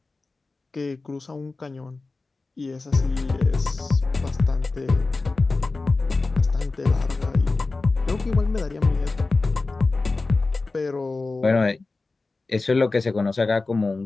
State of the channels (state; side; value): quieter; right; 3.6 dB